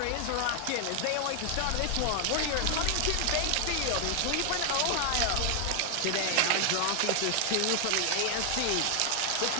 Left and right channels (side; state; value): both; different; correlation 0.00